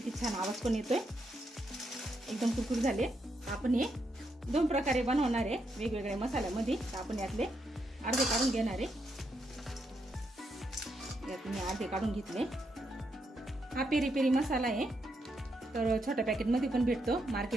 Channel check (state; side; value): normal; both; correlation 0.80